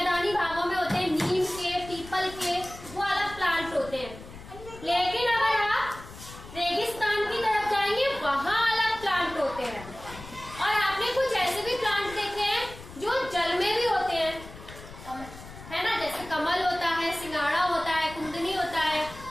भागों में होते हैं, नीम के, पीपल के, वो अलग प्लांट होते हैं। लेकिन अगर आप रेगिस्तान की तरफ जाएंगे वहां अलग प्लांट होते हैं। और आपने कुछ ऐसे भी प्लांट देखे हैं जो जल में भी होते हैं, है ना, जैसे कमल होता है, सिंगाड़ा होता है, कुंदनी होता है,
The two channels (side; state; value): left; noise; rumble, 16 dB below the sound